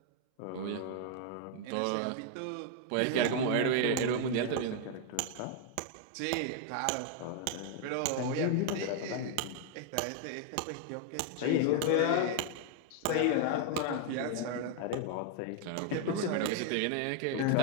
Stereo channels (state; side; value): different; both; correlation 0.00